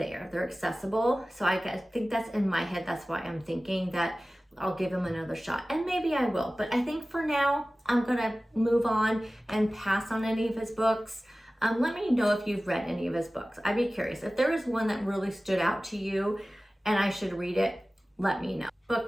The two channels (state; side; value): normal; both; correlation 0.97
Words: They're accessible. So I think that's in my head. That's why I'm thinking that I'll give him another shot, and maybe I will. But I think for now, I'm gonna move on and pass on any of his books. Let me know if you've read any of his books. I'd be curious. If there is one that really stood out to you and I should read it, let me know.